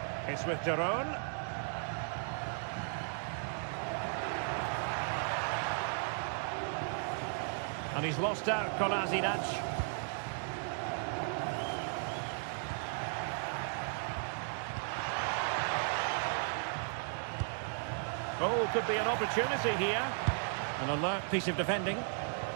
It's with Deron. And he's lost out Kolasinac. Oh, could be an opportunity here. An alert piece of defending.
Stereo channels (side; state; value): left; silent; 54 dB below the other